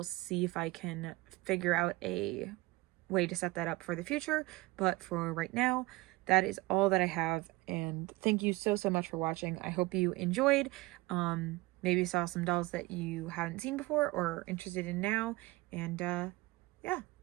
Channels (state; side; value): quieter; left; 21.8 dB